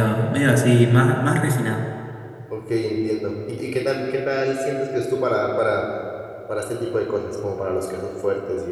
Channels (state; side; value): identical; both; correlation 1.00